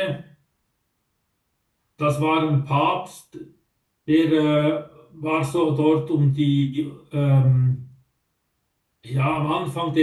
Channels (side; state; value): both; identical; correlation 1.00